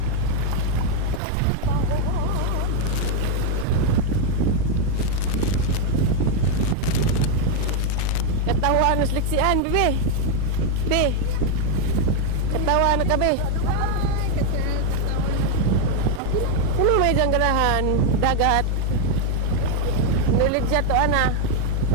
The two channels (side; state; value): both; different; correlation 0.01